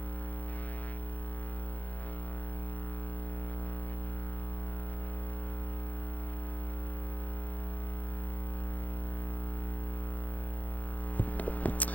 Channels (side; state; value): right; late; 0.076 ms